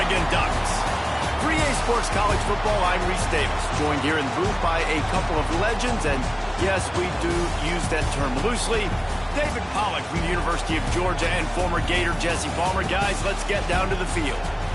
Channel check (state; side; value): identical; both; correlation 1.00